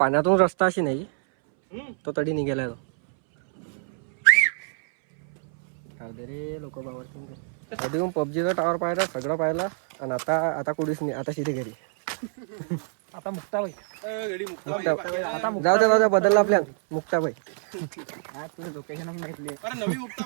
रस्ता अशी नाही. तो तडी निघालाय. रे लोक बावरती आधी पबजीचा टावर पाहिला, सगळं पाहिला. आणि आता कुठेच नाही. आता शिथे घरी. आता मुक्ताबाई. जाऊ द्या बदलला प्लॅन. मुक्ताबाई. तुझं लोकेशन माहितली. नवी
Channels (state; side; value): silent; left; 61 dB below the other